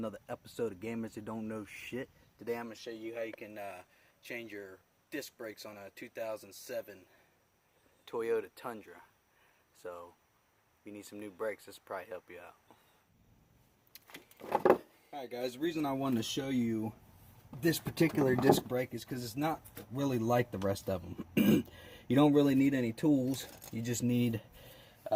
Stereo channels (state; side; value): identical; both; correlation 1.00